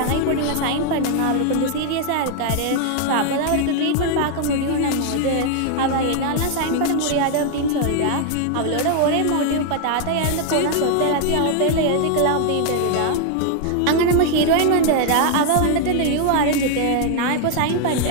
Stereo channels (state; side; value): different; both; correlation 0.00